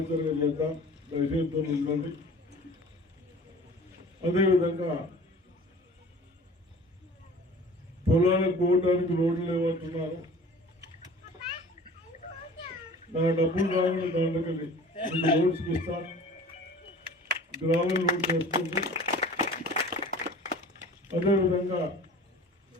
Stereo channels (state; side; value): normal; both; correlation 0.44